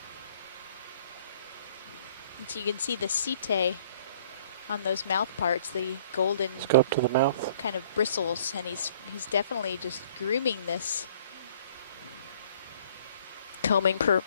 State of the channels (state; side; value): inverted; both; correlation -0.57